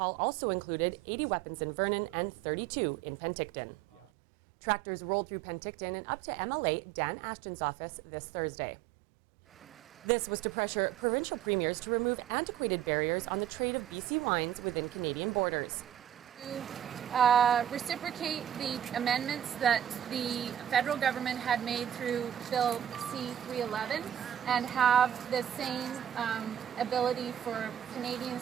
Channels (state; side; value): quieter; left; 10.4 dB